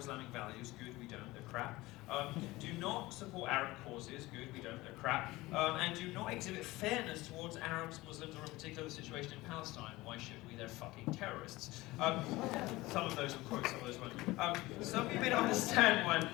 values. Good, we don't, they're crap. Do not support Arab causes. Good, we don't, they're crap. And do not exhibit fairness towards Arabs, Muslims, or in particular the situation in Palestine. Why should we? They're fucking terrorists. Some of those will quote, some of those won't. Some of you may not understand why I'm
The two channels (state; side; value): quieter; right; 19.7 dB